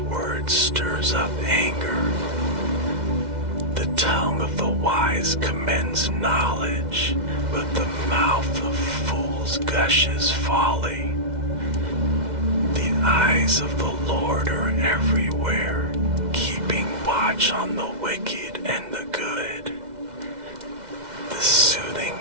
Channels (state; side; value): late; left; 2.1 ms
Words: stirs up anger. The tongue of the wise commends knowledge, but the mouth of fools gushes folly. The eyes of the Lord are everywhere, keeping watch on the wicked and the good. The